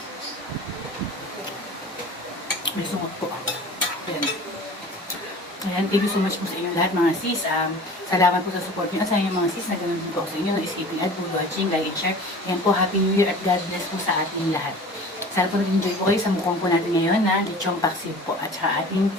May sungot po. Ayan. Ayan, thank you so much po sa inyo lahat mga sis. Salamat po sa support niyo. Sa inyo mga sis, na ganun din po ako sa inyo. No escaping ad, food watching, like and share. Ayan po, Happy New Year at God bless po sa ating lahat. Sana po nag-enjoy po kayo sa mukhang po natin ngayon na lechong paksiw po at saka ating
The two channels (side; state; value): both; normal; correlation 0.41